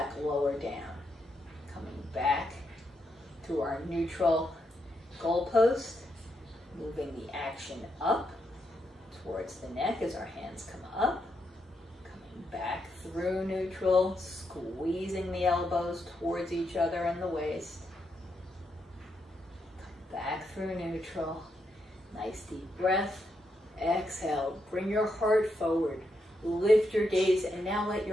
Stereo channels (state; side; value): normal; both; correlation 0.81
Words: lower down. Coming back to our neutral goalpost, moving the action up towards the neck as our hands come up. Coming back through neutral, squeezing the elbows towards each other and the waist. Come back through neutral. Nice deep breath. Exhale, bring your heart forward, Lift your gaze and now let